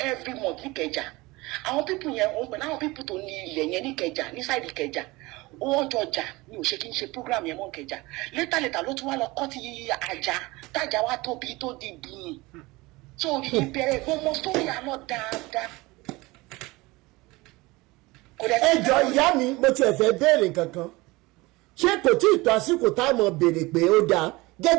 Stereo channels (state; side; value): quieter; left; 22.0 dB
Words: every month ní Ìkẹjà àwọn pípù yẹn òun pẹ̀lú àwọn pípù tó ní ilẹ̀ yẹn ní Ìkẹjà ní sáìdì Ìkẹjà wọ́n jọ jà ní ò ṣe kí n ṣe program yẹn mọ́ Ìkẹjà létà ló tún wá lọ kọ́ ti àjà tájà wá tóbi tó di bùn so ìbẹ̀rẹ̀ gbọmọ sórí àná dáadáa. ẹ jọ ìyá mi mo tiẹ̀ fẹ́ béèrè kankan ṣé kò tí ì tó àsìkò táwọn béèrè pé ó dáa